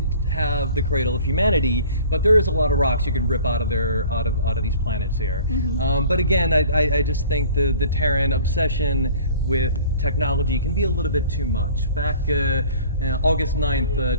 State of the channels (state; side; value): inverted; both; correlation -0.48